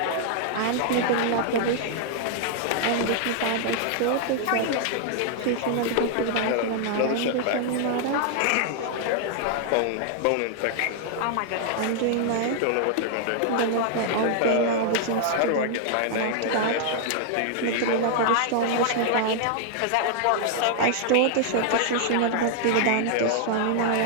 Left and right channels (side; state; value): both; different; correlation -0.01